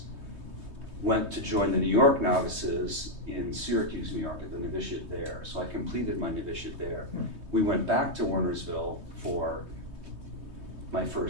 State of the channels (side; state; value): left; late; 3.2 ms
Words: went to join the New York novices in Syracuse, New York, at the novitiate there. So I completed my novitiate there. We went back to Wernersville for my